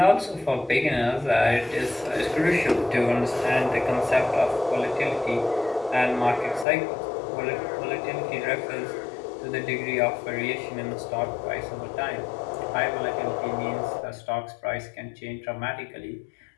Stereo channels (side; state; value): right; drops out; at 6.7 s